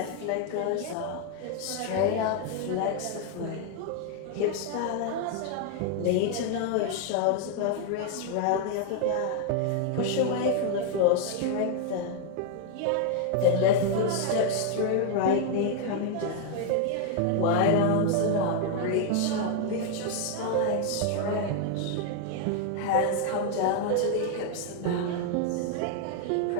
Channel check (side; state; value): both; different; correlation 0.00